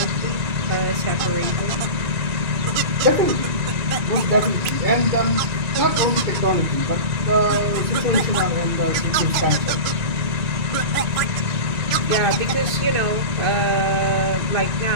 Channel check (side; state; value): left; late; 2.9 ms